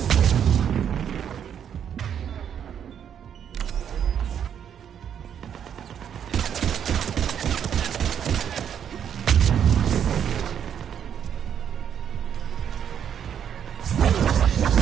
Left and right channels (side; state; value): left; quieter; 8.7 dB